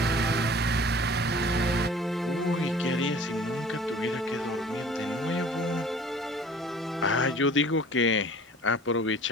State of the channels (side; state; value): both; normal; correlation 0.47